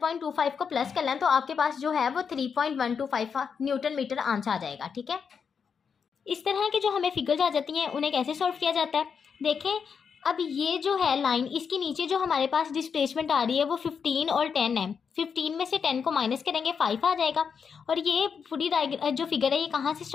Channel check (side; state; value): right; quieter; 6.4 dB